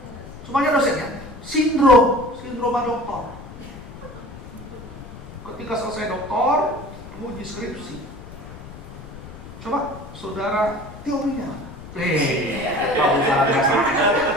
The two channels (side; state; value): left; noise; rumble, 15 dB below the sound